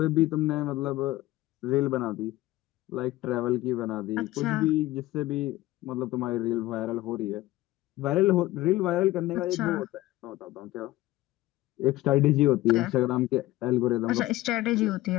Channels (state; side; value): quieter; right; 17.1 dB